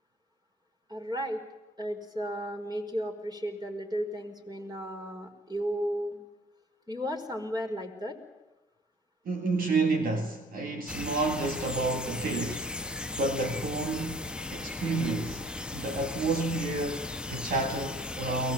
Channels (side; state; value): both; normal; correlation 0.54